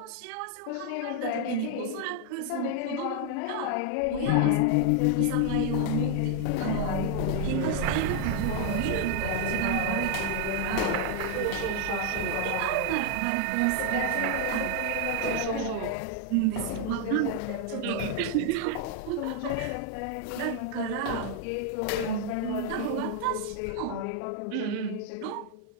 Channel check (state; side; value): different; both; correlation 0.00